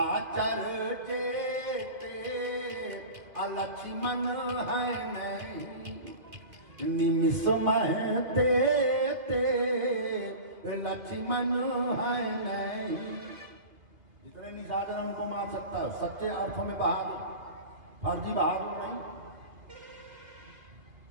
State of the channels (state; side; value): late; left; 2.6 ms